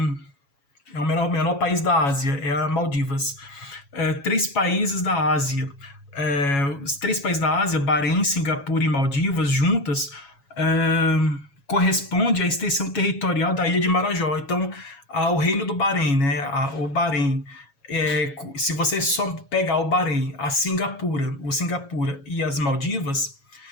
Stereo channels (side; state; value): right; late; 7.2 ms